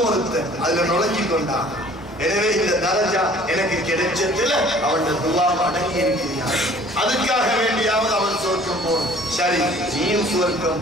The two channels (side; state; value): both; normal; correlation 0.52